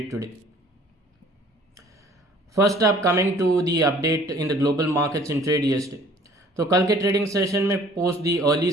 today. First up coming to the update in the global markets in trade yesterday। तो कल के trading session में post the early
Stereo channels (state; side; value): normal; both; correlation 0.54